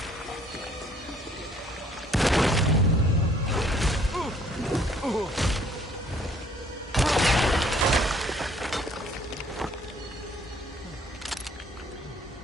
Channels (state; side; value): normal; both; correlation 0.61